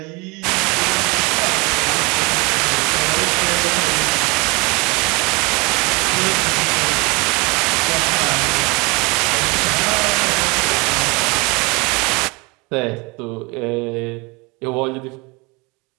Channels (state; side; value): quieter; left; 27.3 dB